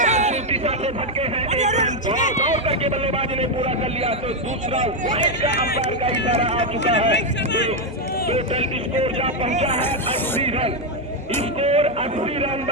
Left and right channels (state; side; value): normal; both; correlation 0.04